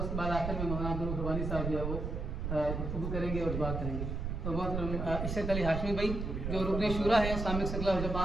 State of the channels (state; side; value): noise; right; rumble, 3 dB below the sound